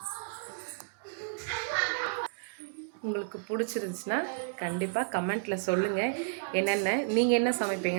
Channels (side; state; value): left; silent; digital silence